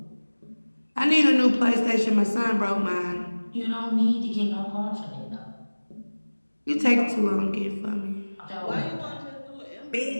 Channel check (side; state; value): both; inverted; correlation -1.00